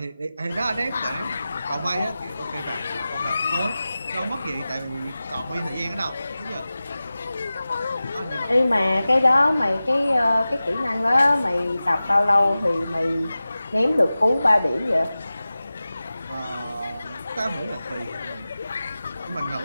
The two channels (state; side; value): inverted; both; correlation -0.96